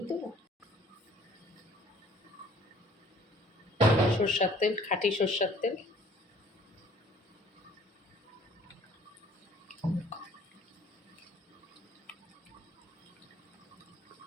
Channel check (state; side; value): normal; both; correlation 0.55